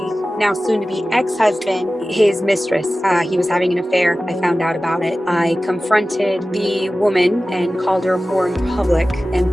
now soon to be ex-husband, his mistress. He was having an affair. I found out about it. I confronted the woman and called her a whore in public. And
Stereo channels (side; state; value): both; normal; correlation 0.96